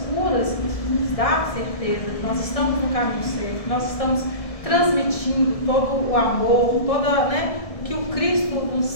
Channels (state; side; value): late; right; 1.7 ms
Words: curas, isso nos dá certeza que nós estamos no caminho certo, que nós estamos transmitindo todo o amor, toda, né, que o Cristo